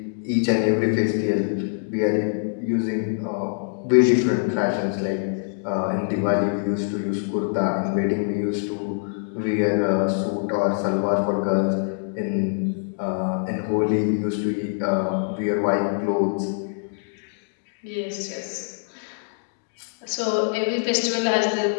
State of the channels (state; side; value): silent; right; digital silence